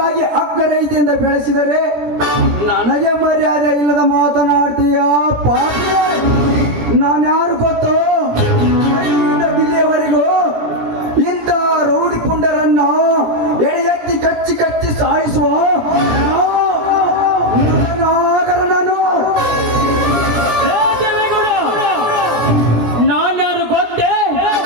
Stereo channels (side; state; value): left; late; 17 ms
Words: ಅಕ್ಕರೈತೆಯಿಂದ ಬೆಳೆಸಿದರೆ ನನಗೆ ಮರ್ಯಾದೆ ಇಲ್ಲದ ಮಾತನಾಡ್ತೀಯ ಪಾಪಿ. ನಾನ್ಯಾರು ಗೊತ್ತೋ? ಅಲ್ಲಿಂದ ದಿಲ್ಲಿಯವರೆಗೂ ಇಂಥ ರೌಡಿ ಪುಂಡರನ್ನ ಎಳೆ ಎತ್ತಿ ಕಚ್ಚಿ ಕಚ್ಚಿ ಸಾಯಿಸುವ ನಾಗರ ನಾನು. ಏ ದೇವೇಗೌಡ, ನಾನ್ಯಾರು ಗೊತ್ತೇ?